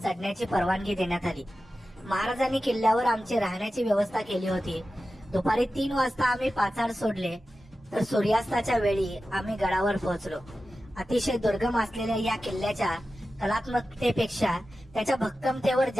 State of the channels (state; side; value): normal; both; correlation 0.93